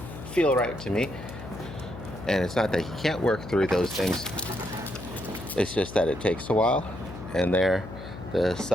feel right to me. And it's not that he can't work through those things, it's just that it takes a while. And there, the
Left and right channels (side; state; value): left; noise; hum, 12 dB below the sound